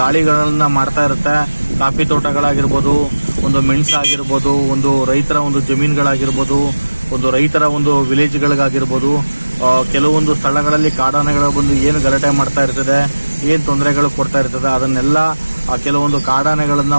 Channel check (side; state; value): both; inverted; correlation -1.00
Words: ಮಾಡ್ತಾ ಇರುತ್ತೆ. ಕಾಫಿ ತೋಟಗಳಾಗಿರ್ಬೋದು, ಒಂದು ಮೆಣಸಾಗಿರ್ಬೋದು, ಒಂದು ರೈತರ ಒಂದು ಜಮೀನುಗಳಾಗಿರ್ಬೋದು, ಒಂದು ರೈತರ ಒಂದು ವಿಲೇಜ್ಗಳಿಗಾಗಿರ್ಬೋದು, ಕೆಲವೊಂದು ಸ್ಥಳಗಳಲ್ಲಿ ಕಾಡಾನೆಗಳು ಬಂದು ಏನು ಗಲಾಟೆ ಮಾಡ್ತಾ ಇರ್ತದೆ, ಏನು ತೊಂದರೆಗಳು ಕೊಡ್ತಾ ಇರ್ತದೆ, ಅದನ್ನೆಲ್ಲ ಕೆಲವೊಂದು